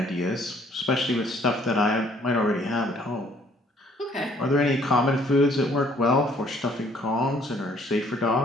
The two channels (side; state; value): both; normal; correlation 0.61